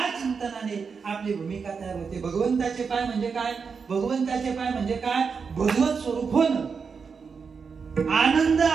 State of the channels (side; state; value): left; quieter; 5.6 dB